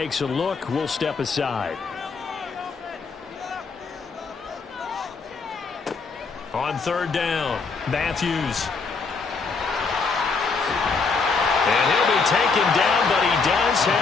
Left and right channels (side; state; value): right; quieter; 4.7 dB